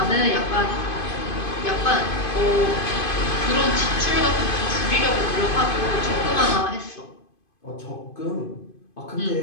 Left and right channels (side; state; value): right; late; 2.5 ms